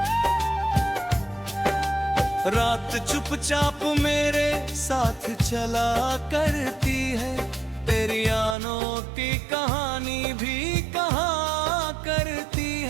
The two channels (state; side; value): drops out; left; at 8.6 s